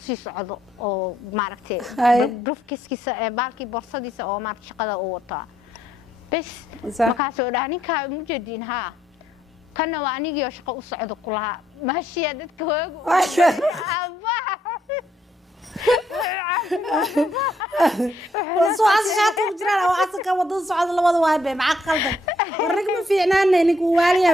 sii socdo oo maaragtay brofkiisa baalkii borsadiisa oo maaragtay shaqada uu wataa bas markaas oo dhahay ninka muu jeedin ha kana waa anigii oo shaqo u socdo kulaha maashiya dadka hoogu وصوص شاطر وجرا وعسك ودن صعد لبد واي مع قلبك ورق ما فيعنانا نيك واليا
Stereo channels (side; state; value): both; normal; correlation 0.72